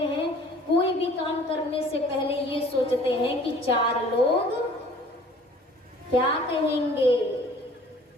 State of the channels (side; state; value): both; normal; correlation 0.51